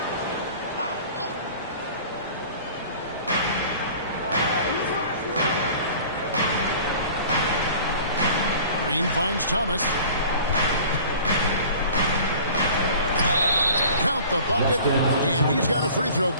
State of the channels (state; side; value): inverted; both; correlation -0.45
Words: Green finds Thomas. Count the bucket, and he's got a free throw